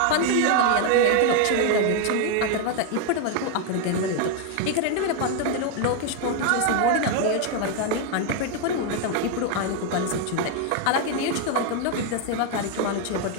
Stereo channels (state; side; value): different; both; correlation 0.01